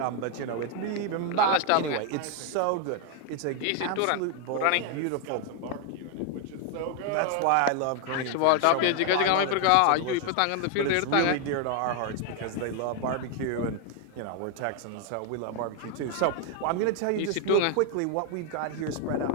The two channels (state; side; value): different; both; correlation 0.01